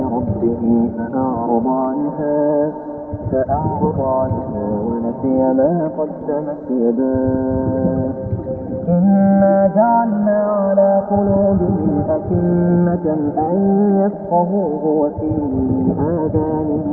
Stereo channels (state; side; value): identical; both; correlation 1.00